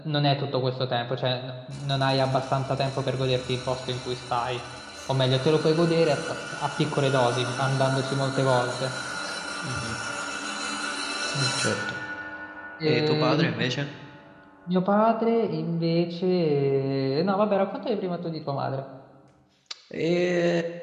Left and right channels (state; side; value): identical; both; correlation 1.00